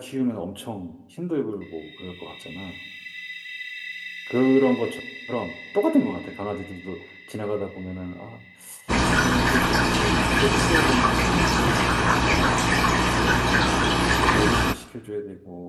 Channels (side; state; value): both; identical; correlation 1.00